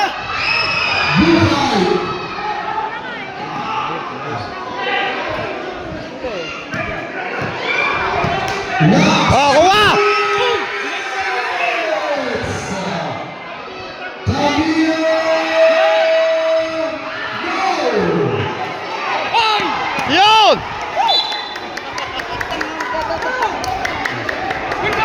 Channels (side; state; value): both; identical; correlation 1.00